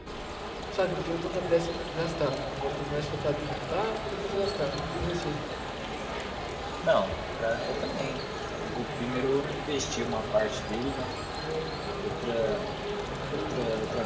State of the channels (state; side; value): identical; both; correlation 1.00